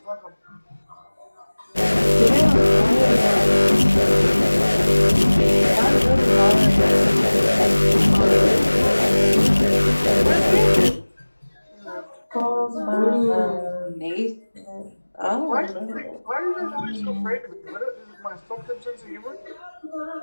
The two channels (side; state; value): both; inverted; correlation -1.00